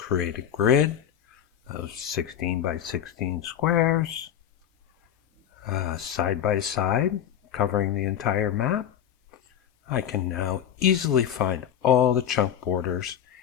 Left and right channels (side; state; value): right; quieter; 9.6 dB